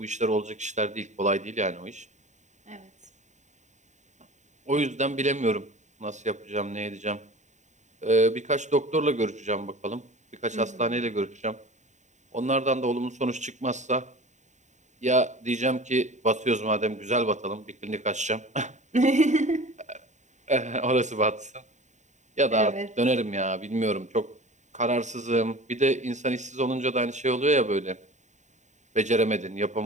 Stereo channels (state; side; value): late; left; 0.34 ms